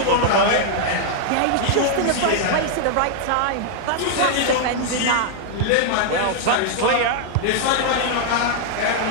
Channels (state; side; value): different; both; correlation -0.01